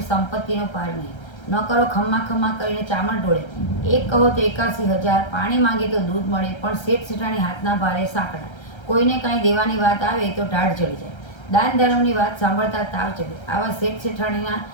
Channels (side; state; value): right; late; 1.3 ms